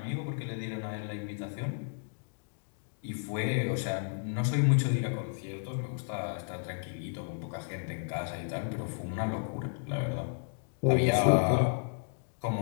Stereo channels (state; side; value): silent; right; digital silence